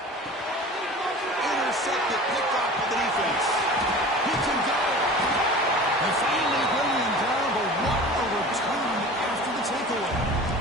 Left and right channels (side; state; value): both; normal; correlation 0.39